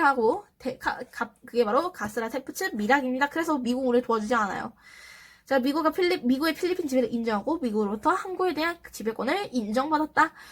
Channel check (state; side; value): identical; both; correlation 1.00